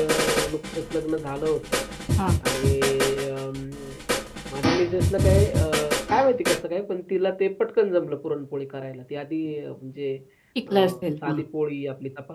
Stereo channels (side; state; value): both; identical; correlation 1.00